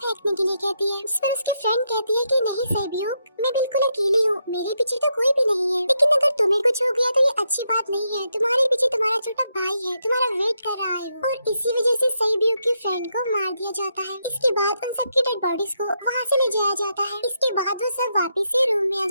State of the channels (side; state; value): both; inverted; correlation -0.81